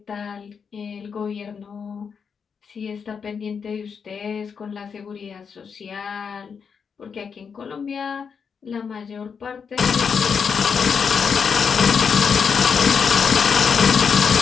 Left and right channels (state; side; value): quieter; right; 6.3 dB